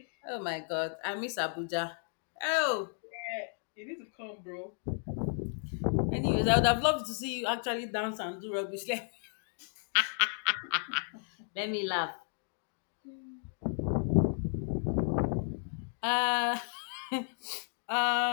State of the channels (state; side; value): silent; right; 55 dB below the other